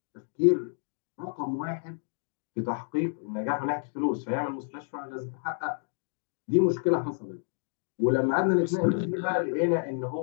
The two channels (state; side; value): silent; right; digital silence